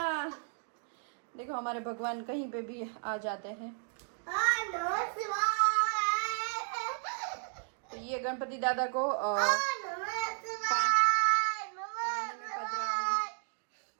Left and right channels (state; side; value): silent; left; 55 dB below the other